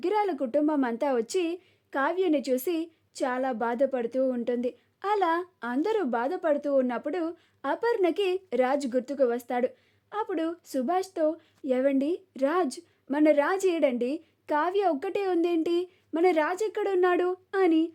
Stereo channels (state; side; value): identical; both; correlation 1.00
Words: కుటుంబం అంతా వచ్చి కావ్యని చూసి చాలా బాధపడుతూ ఉంటుంది. అలా అందరూ బాధపడుతూ ఉన్నప్పుడు అపర్ణకి రాజ్ గుర్తుకు వస్తాడు. అప్పుడు సుభాష్తో, ఏవండి రాజ్, మన రాజ్ ఏడండి, కావ్య ఒక్కటే ఉందేంటి, మన రాజ్ ఎక్కడున్నాడు అని